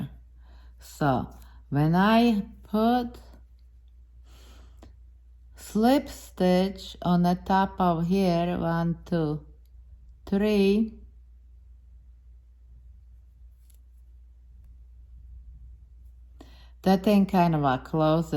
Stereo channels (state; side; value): identical; both; correlation 1.00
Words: So when I put slip stitch on the top of here, 1, 2, 3, that thing kind of